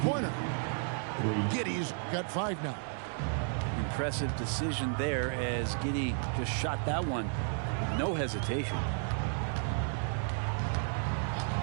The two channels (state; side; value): silent; left; 56 dB below the other